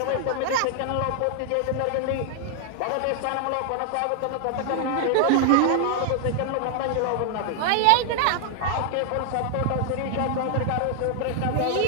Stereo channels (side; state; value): both; different; correlation 0.00